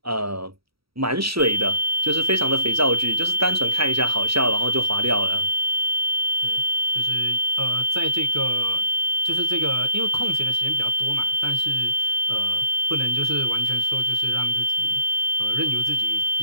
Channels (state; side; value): late; left; 0.76 ms